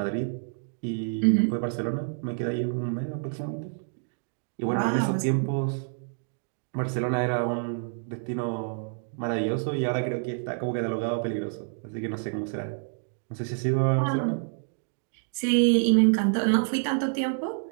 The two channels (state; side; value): silent; left; digital silence